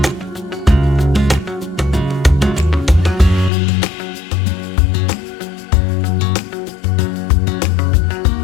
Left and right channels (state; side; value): drops out; right; at 3.5 s